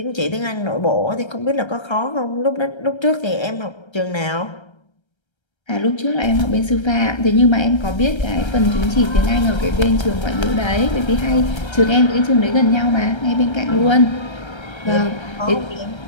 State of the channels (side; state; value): right; late; 1.3 ms